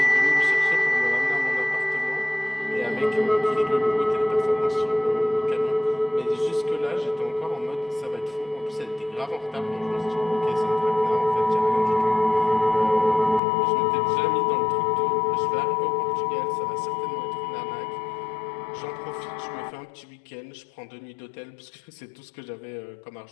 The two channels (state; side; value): drops out; right; at 13.4 s